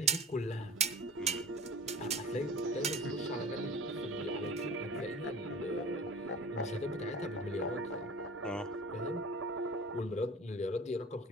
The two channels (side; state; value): both; normal; correlation 0.38